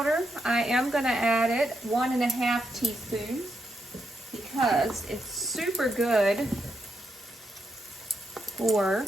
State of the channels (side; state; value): both; normal; correlation 0.82